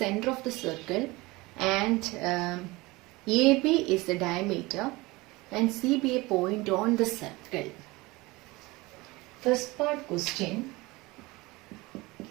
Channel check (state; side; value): quieter; left; 22.1 dB